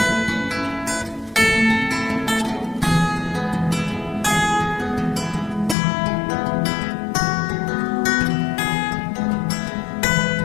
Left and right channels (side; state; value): right; drops out; at 5.8 s